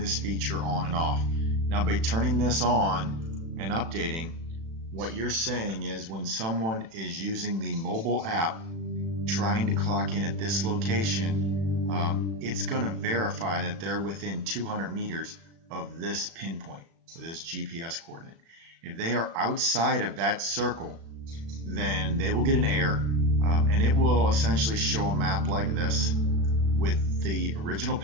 feature on and off. Now by turning this on and updating, what you're saying is when someone is using the mobile app trying to clock in at this location, it's going to verify that they're within 200 meters of this pinpoint, or this GPS coordinate. If they are outside of that circle, then they will get an error, and it will essentially show a map like this with the original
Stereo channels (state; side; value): late; left; 36 ms